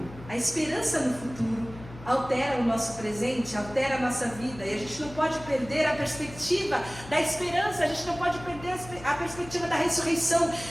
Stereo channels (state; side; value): noise; left; hum, 16 dB below the sound